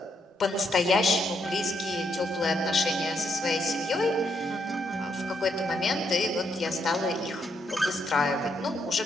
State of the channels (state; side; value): normal; both; correlation 0.76